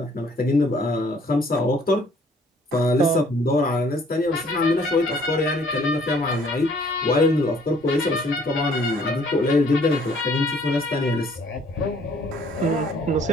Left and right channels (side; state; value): both; normal; correlation 0.60